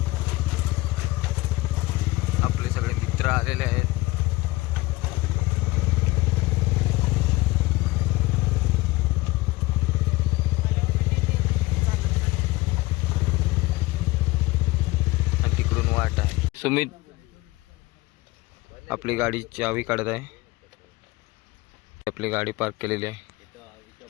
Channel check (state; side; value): quieter; right; 20.3 dB